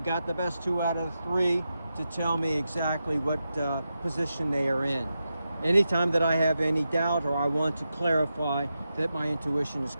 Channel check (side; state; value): both; inverted; correlation -0.89